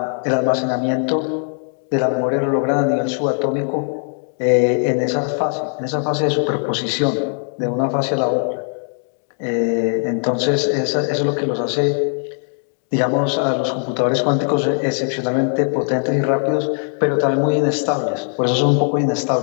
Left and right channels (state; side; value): silent; right; 58 dB below the other